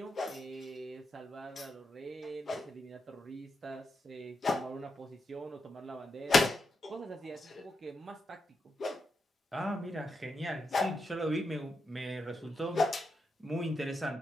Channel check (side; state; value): both; normal; correlation 0.85